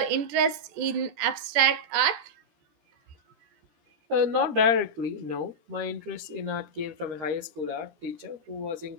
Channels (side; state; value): left; late; 14 ms